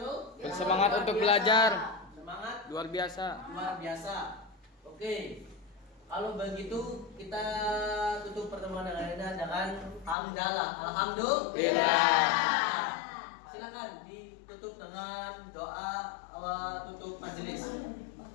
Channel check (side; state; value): right; drops out; at 10.2 s